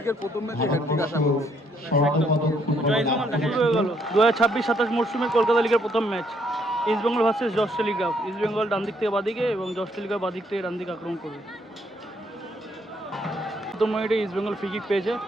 প্রথম ম্যাচে হ্যাটট্রিক আশা করছি। জয় ইস্ট বেঙ্গল দেখা হয়ে গেল 2026-27 মরশুমের কলকাতা লিগের প্রথম ম্যাচ ইস্ট বেঙ্গল ভার্সেস জস টেলিগ্রাফ। ইস্ট বেঙ্গল ডান দিক থেকে বাদিকে এবং জস টেলিগ্রাফ বাদিক থেকে ডান দিকে আক্রমণ করবে। প্রথম মিনিটে ইস্ট বেঙ্গল ফ্রি কিক পেয়েছে,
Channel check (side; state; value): both; normal; correlation 0.70